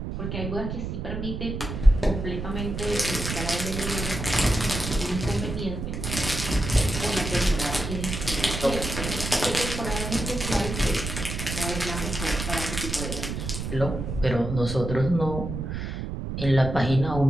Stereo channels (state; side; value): noise; right; rumble, 5 dB below the sound